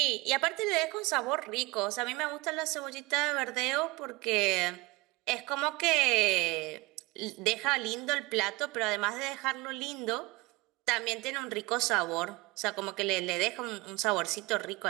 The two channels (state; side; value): quieter; left; 23.1 dB